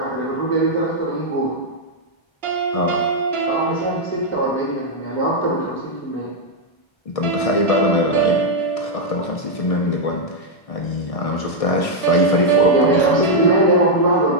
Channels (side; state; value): right; late; 1.6 ms